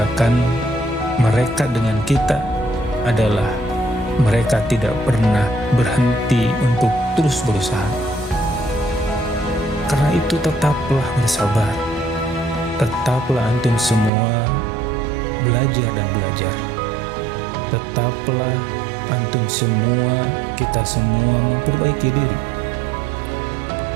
mereka dengan kita adalah mereka tidak pernah berhenti untuk terus berusaha. Karena itu tetaplah bersabar. Tetaplah antum semua belajar dan belajar. Tetaplah antum semua, kita semua memperbaiki diri.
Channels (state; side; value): drops out; left; at 14.1 s